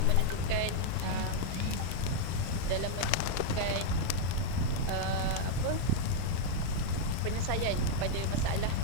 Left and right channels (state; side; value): different; both; correlation 0.00